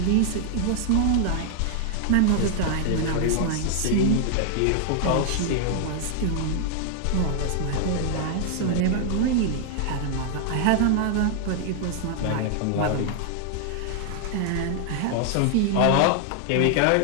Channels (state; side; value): different; both; correlation 0.00